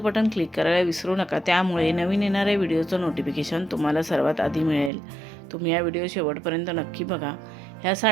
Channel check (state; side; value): drops out; left; at 4.9 s